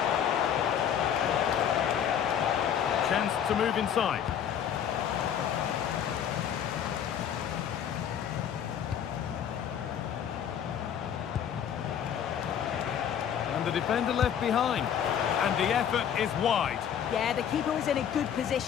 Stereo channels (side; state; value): right; quieter; 8.9 dB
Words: Chance to move inside. And the defender left behind. And the effort is wide. Yeah, the keeper was in a good